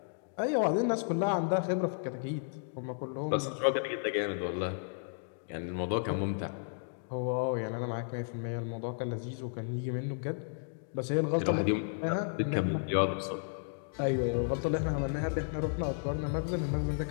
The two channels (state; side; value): silent; right; digital silence